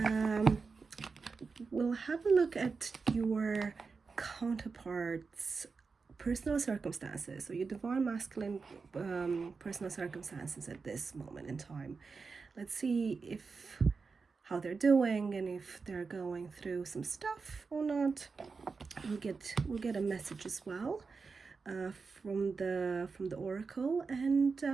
We'll have a look at your counterparts' personal circumstances, so your divine masculine personal circumstances at this moment in time. Let's see if how they're doing and if they're going through some stuff or not. We'll get a message as well from the oracle, and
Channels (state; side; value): quieter; left; 4.7 dB